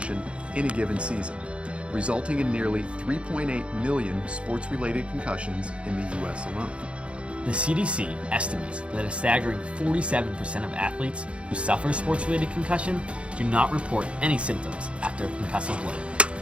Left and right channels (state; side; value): late; left; 0.059 ms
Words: in a given season, resulting in nearly 3.8 million sports-related concussions in the U.S. alone. The CDC estimates that a staggering 47% of athletes who suffer a sports-related concussion do not report any symptoms after a concussive